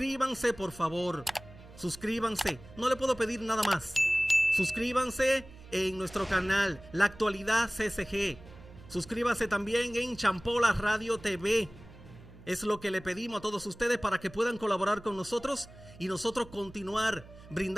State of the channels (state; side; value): noise; right; hum, 20 dB below the sound